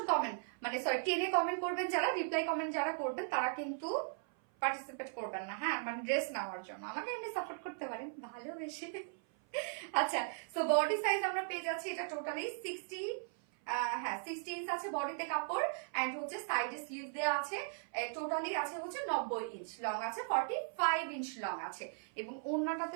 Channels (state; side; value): silent; left; 53 dB below the other